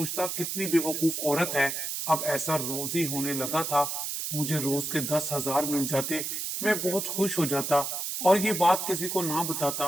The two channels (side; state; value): right; noise; hiss, 3 dB below the sound